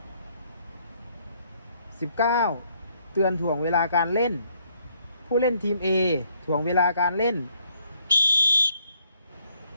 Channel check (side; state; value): both; inverted; correlation -0.68